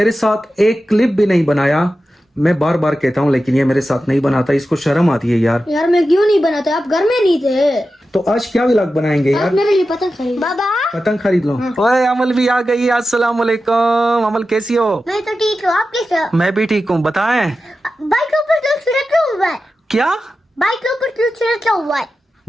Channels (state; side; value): normal; both; correlation 0.92